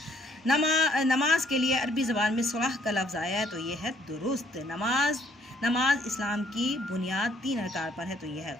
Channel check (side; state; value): both; normal; correlation 0.65